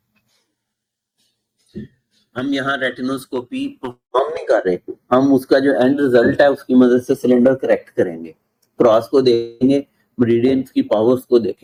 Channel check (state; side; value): identical; both; correlation 1.00